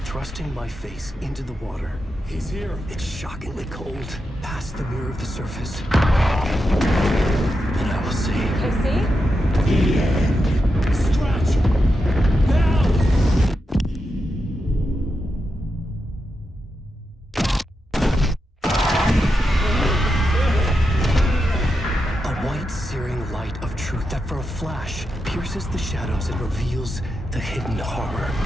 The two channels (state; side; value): normal; both; correlation 0.87